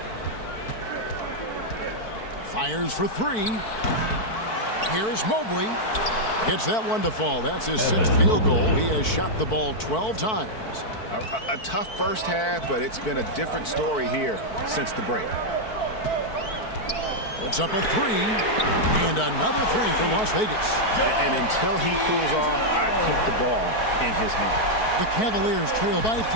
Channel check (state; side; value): late; right; 4.5 ms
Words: Fires for 3. Here's Mobley. Gets that one to fall. That's his 6th field goal. He has shot the ball 12 times. A tough first half, but it's been a different story here since the break. Puts up a 3, and another 3 for Las Vegas. And until he cools off, I'd keep the ball in his hand. The Cavaliers trail by